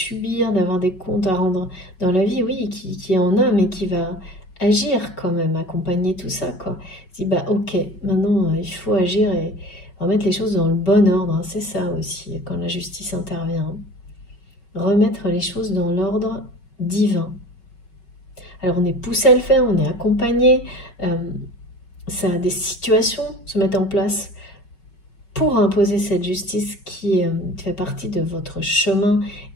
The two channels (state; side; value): late; right; 5.4 ms